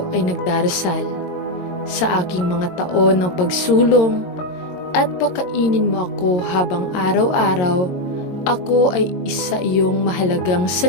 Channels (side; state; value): right; late; 22 ms